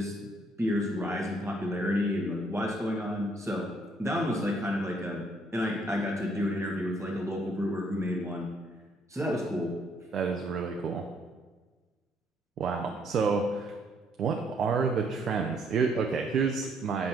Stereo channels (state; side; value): normal; both; correlation 0.68